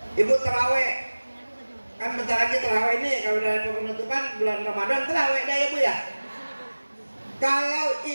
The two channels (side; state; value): both; inverted; correlation -1.00